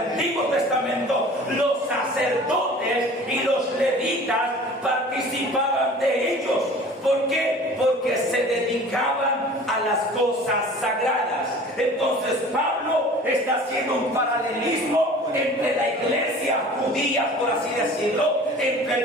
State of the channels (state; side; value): normal; both; correlation 0.44